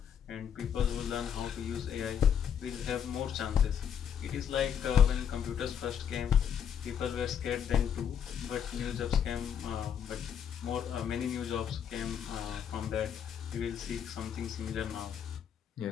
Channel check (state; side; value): quieter; right; 8.4 dB